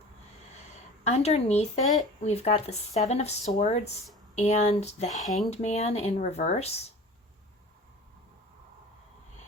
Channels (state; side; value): normal; both; correlation 0.40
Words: Underneath it, we've got the Seven of Swords and the Hanged Man in reverse.